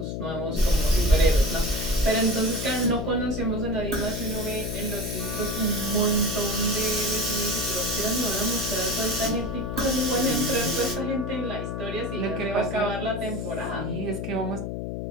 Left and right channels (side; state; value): left; noise; hum, 4 dB below the sound